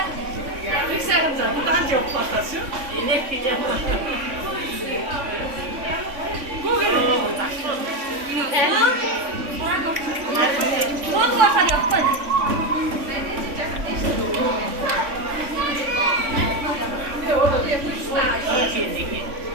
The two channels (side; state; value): left; late; 3.6 ms